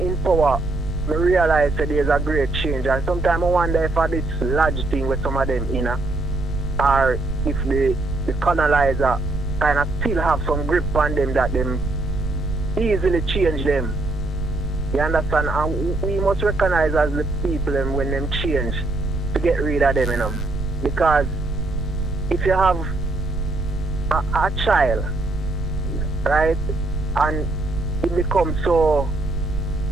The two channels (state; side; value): noise; right; rumble, 4 dB below the sound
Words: power, I realize that there's a great change. And sometimes I wonder if this large thing with some of them in, or if the colonizer kind of still have some grip on them that them easily change them. You understand? And we must recognize as the people when them change to get rid of them, you know. Because if you have a child, right, and it becomes so,